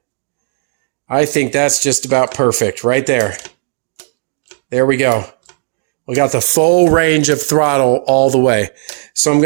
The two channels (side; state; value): left; silent; digital silence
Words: I think that's just about perfect right there. There we go. We got the full range of throttle all the way. So I'm